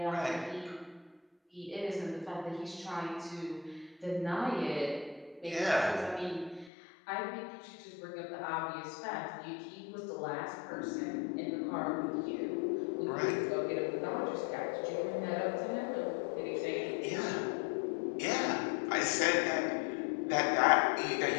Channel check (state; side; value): drops out; right; at 6.7 s